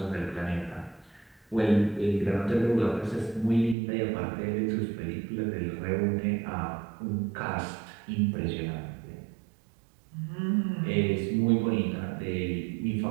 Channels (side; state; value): left; drops out; at 3.8 s